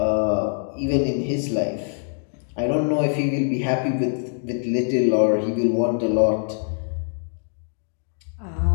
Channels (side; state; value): right; silent; digital silence